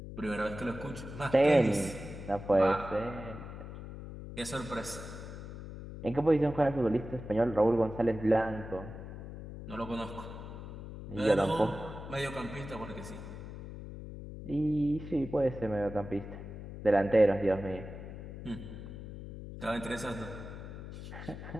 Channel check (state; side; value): noise; left; hum, 11 dB below the sound